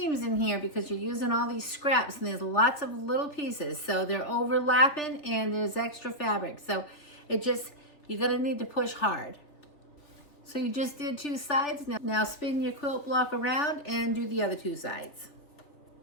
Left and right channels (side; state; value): right; late; 3.4 ms